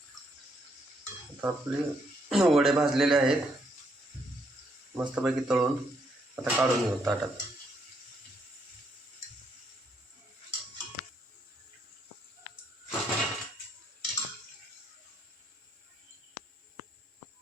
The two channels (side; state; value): both; normal; correlation 0.73